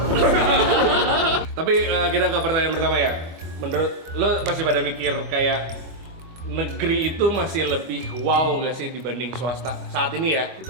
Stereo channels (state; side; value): late; left; 24 ms